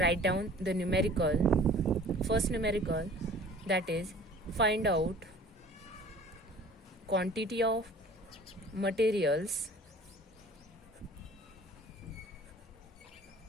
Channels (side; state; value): both; normal; correlation 0.48